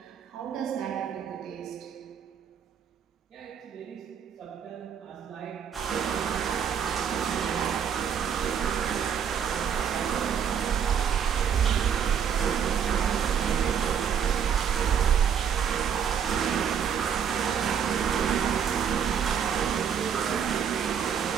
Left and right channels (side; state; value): left; quieter; 7.8 dB